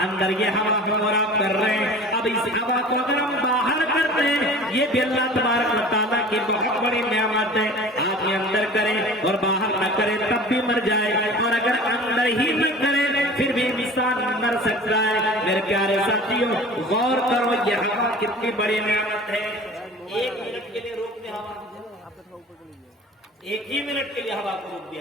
اندر یہ ہوا ہم اور آپ کر رہے ہیں، اب اس ہوا کو اگر ہم باہر کرتے ہیں، یہ بھی اللہ تبارک و تعالیٰ کی بہت بڑی نعمت ہے۔ آپ یہ اندر کریں اور باہر نہ کریں تب بھی مر جائے، اور اگر اندر ہی نہ کریں پھر بھی انسان مر سکتا ہے۔ میرے پیارے ساتھیوں، غور کرو یہ ہوا کتنی بڑی نعمت ہے۔ 1 منٹ کے لیے روک دیں ہوا، 1 ہی منٹ کے لیے ہوا کو روک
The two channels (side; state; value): both; normal; correlation 0.41